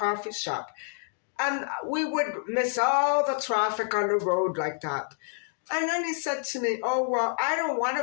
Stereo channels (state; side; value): silent; right; digital silence